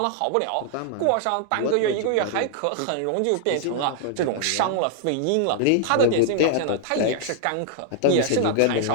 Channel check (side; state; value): both; different; correlation -0.01